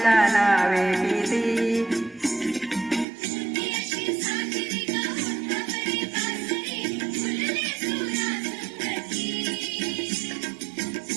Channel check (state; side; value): drops out; left; at 3.1 s